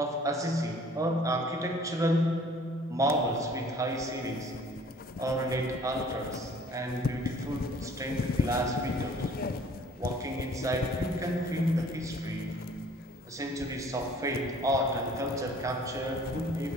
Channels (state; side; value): normal; both; correlation 0.53